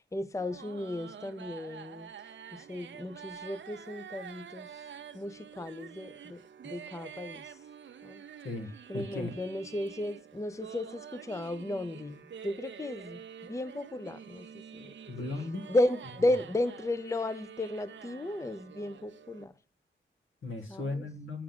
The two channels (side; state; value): both; normal; correlation 0.80